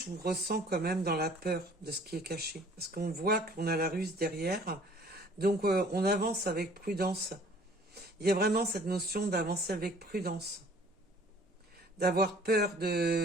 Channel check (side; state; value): both; normal; correlation 0.53